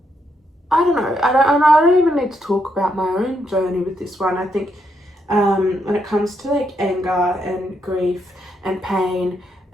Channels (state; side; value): normal; both; correlation 0.78